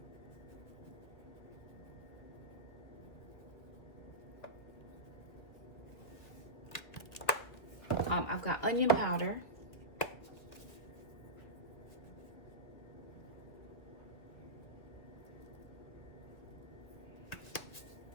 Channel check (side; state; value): right; late; 2.1 ms